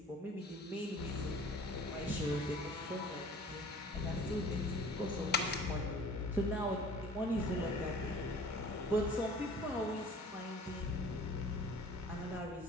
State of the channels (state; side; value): normal; both; correlation 0.47